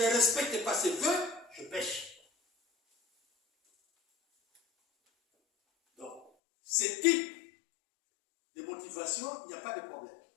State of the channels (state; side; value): drops out; right; at 6.3 s